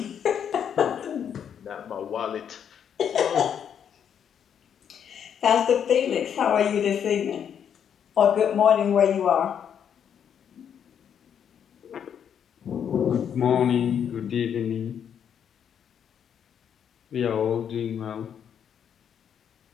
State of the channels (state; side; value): quieter; right; 8.4 dB